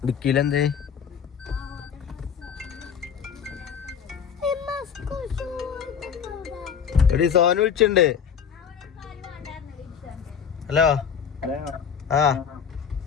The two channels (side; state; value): right; quieter; 7.4 dB